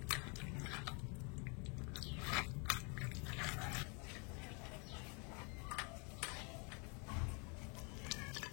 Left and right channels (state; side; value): quieter; right; 34.3 dB